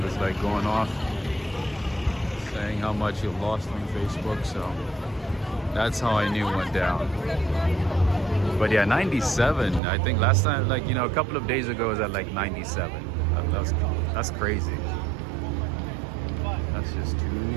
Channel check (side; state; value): left; drops out; at 9.8 s